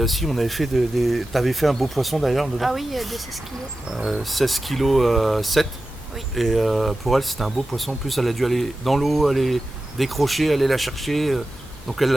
fait t'avais fait un beau poisson d'ailleurs dedans. Ah oui, de 16 kilos. 16 kg 7. Oui. Et pour elle, c'était un beau poisson. En plus, elle a dû aller dans l'eau, aller décrocher, aller la chercher. Donc elle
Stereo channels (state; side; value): normal; both; correlation 0.93